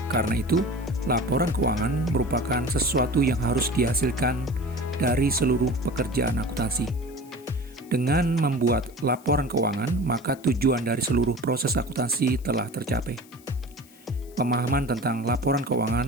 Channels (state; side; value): noise; left; hiss, 25 dB below the sound